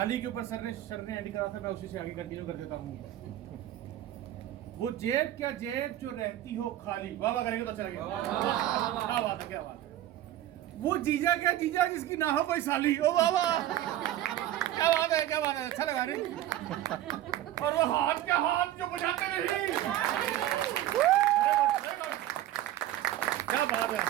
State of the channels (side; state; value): left; quieter; 13.4 dB